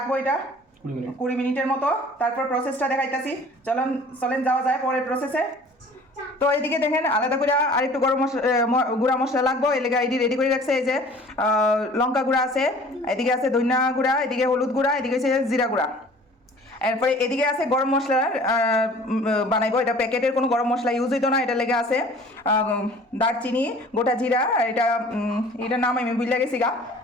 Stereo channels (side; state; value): both; normal; correlation 0.48